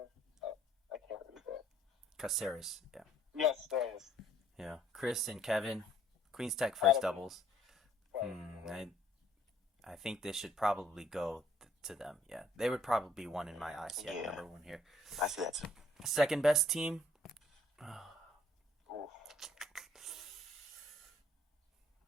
I can't read that. Caceres, yeah. Yes, there it is. Yeah. Chris and Kevin. Queens Tech first doubles. I think this should probably go to them. Yeah. They would probably be one in my eyes. Yeah, number one here. I see that too. Second best team.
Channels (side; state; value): both; normal; correlation 0.62